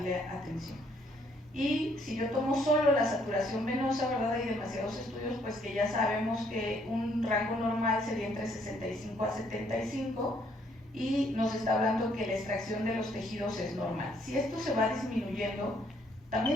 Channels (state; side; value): normal; both; correlation 0.67